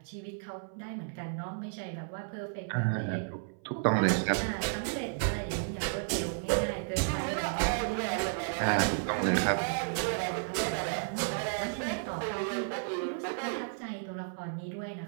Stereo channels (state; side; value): silent; left; 56 dB below the other